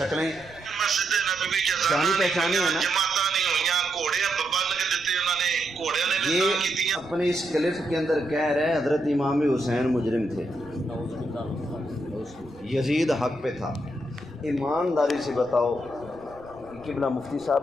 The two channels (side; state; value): right; noise; rumble, 23 dB below the sound